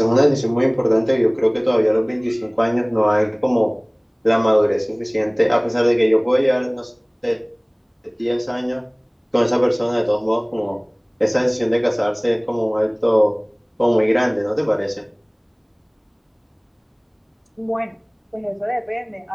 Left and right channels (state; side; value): identical; both; correlation 1.00